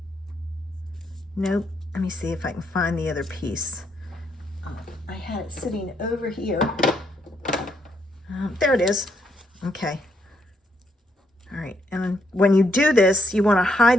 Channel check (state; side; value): normal; both; correlation 0.75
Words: nope, let me see if I can find the other piece. I had it sitting over here. There it is. Okay. All right, and when you do this, you want to